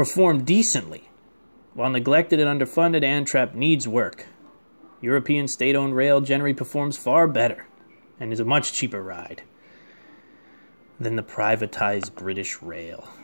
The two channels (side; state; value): both; inverted; correlation -1.00